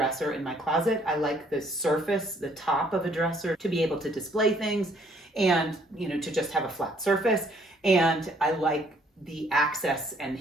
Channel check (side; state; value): both; normal; correlation 0.64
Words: in my closet. I like the surface, the top of a dresser, to be able to display things and, to just have a flat surface. And I like the access and